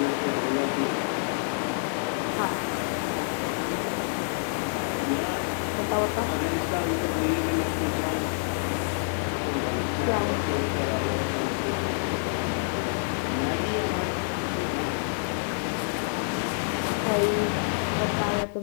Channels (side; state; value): right; silent; 60 dB below the other